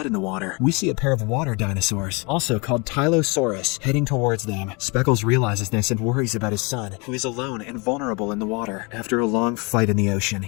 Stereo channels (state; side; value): quieter; right; 29.8 dB